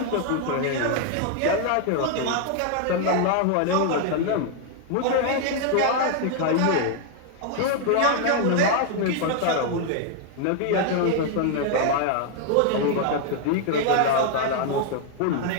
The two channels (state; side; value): different; both; correlation 0.00